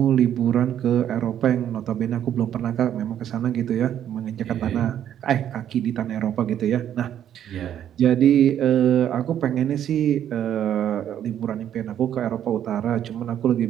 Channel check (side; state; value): left; quieter; 10.3 dB